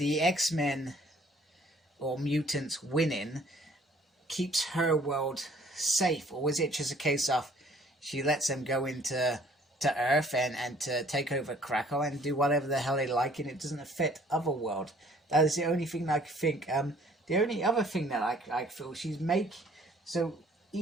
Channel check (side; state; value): both; normal; correlation 0.58